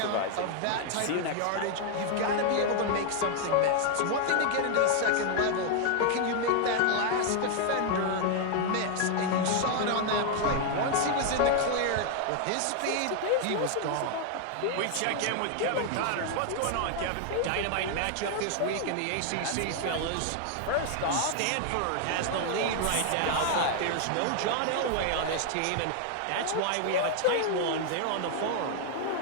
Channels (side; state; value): both; different; correlation 0.00